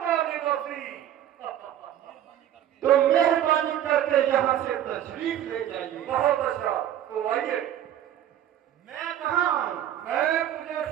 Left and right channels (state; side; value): quieter; left; 11.2 dB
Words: निवासी। तो मेहरबानी करके यहाँ से तशरीफ ले जाइए। बहुत अच्छा, तो आइए। मैं कहाँ आऊँ? मैं तुझे